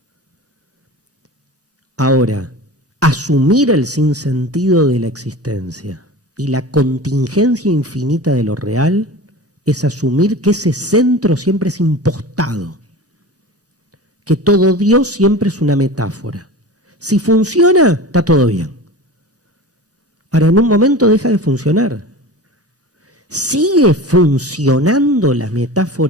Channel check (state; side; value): normal; both; correlation 0.34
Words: Ahora, asumir el sinsentido de la existencia y la contingencia infinita de lo real es asumir que ese centro siempre es impostado, que todo Dios siempre es una metáfora. Si funciona, está todo bien. Ahora, en un momento deja de funcionar. ¿Sigue funcionando la